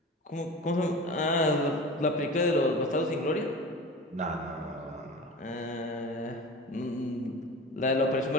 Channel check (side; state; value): both; normal; correlation 0.33